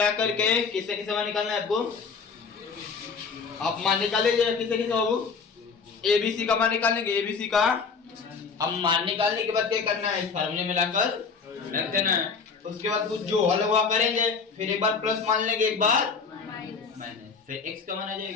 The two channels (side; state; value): right; quieter; 5.3 dB